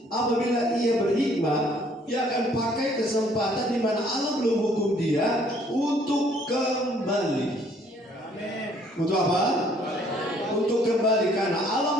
apabila ia berhikmat, dia akan pakai kesempatan di mana Allah belum hukum dia untuk kembali. Untuk apa? Untuk kembali, karena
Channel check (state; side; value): normal; both; correlation 0.62